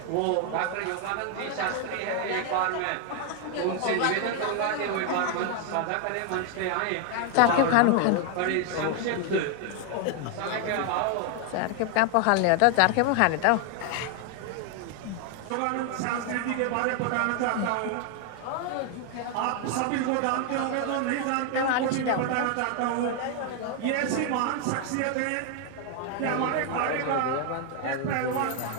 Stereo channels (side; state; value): both; different; correlation 0.01